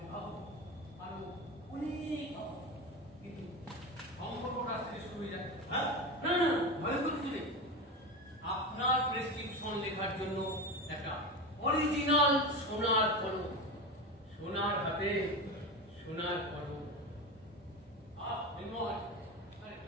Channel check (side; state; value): both; normal; correlation 0.22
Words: ভাবুন আরো অনেক পাবো। কিন্তু সম্পর্কটা আসতে শুরু হয়ে যায়। হ্যাঁ, না না ভয় করতে নেই। আপনার প্রেসক্রিপশন লেখার জন্য একটা অরিজিনাল সোনার কলম, সোনার হাতে সোনার কলম। নির্মল, আরে